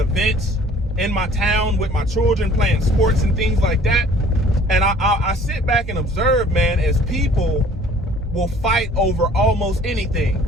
in my town with my children playing sports and things like that. And I sit back and observe, man, as people will fight over almost anything.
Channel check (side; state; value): both; normal; correlation 0.53